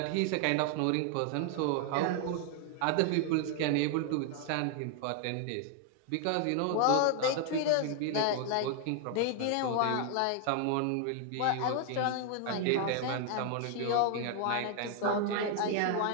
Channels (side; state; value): both; different; correlation 0.00